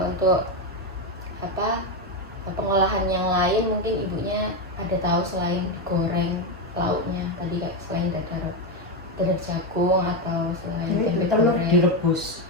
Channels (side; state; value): both; normal; correlation 0.09